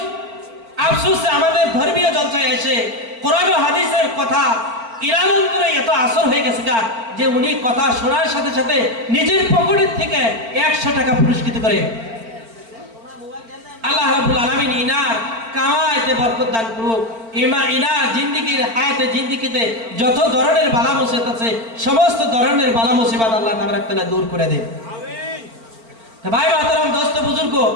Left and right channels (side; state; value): left; late; 4.4 ms